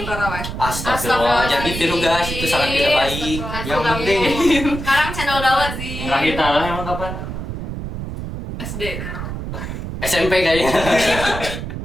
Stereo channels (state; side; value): noise; right; rumble, 6 dB below the sound